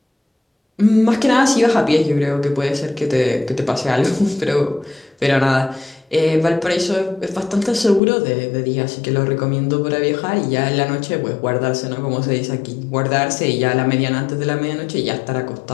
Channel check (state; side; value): drops out; right; at 8.0 s